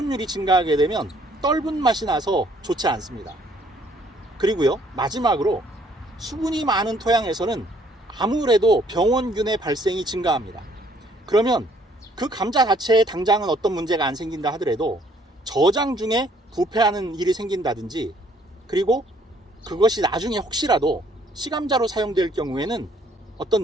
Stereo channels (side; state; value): both; normal; correlation 0.63